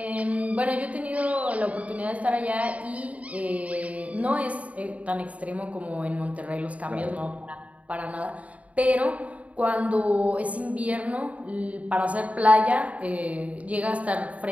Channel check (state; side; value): late; left; 0.068 ms